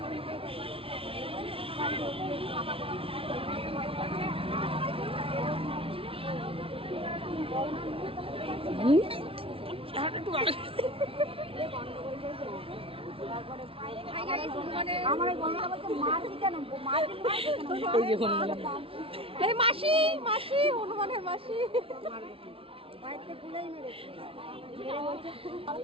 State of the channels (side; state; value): left; late; 0.26 ms